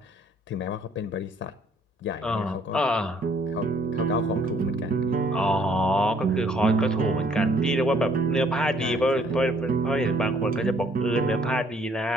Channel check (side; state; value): both; normal; correlation 0.63